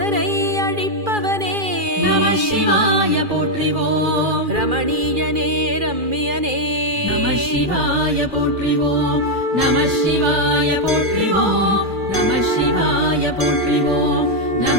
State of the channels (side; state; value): left; late; 2.4 ms